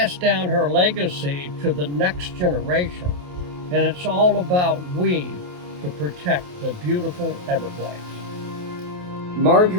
down her legacy to the next generation, and it's all about we to protect the beautiful Everglades.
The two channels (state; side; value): late; left; 28 ms